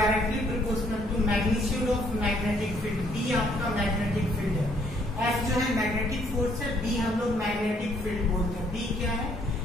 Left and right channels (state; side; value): normal; both; correlation 0.66